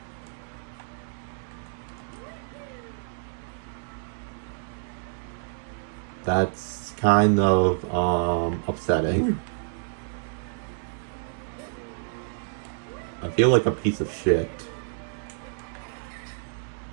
That's kind of upsetting. I feel like a piece of shit.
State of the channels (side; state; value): left; silent; digital silence